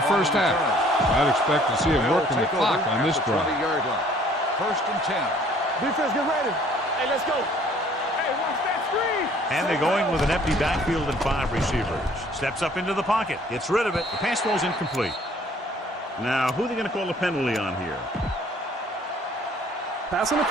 first half. I'd expect to see him working the clock on this drive. 20-yard line. First and 10. Defense, get ready. Hey, let's go. Hey, watch that screen. And they're going with an empty backfield and 5 receivers. Steps up into the pocket. Gets rid of it. The pass ball's incomplete. Now, who are they going to call a penalty on here? Pass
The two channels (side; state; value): both; normal; correlation 0.57